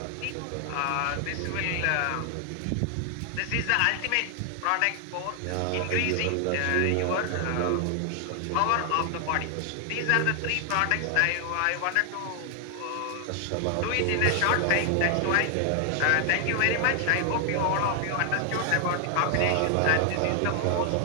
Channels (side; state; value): both; different; correlation 0.00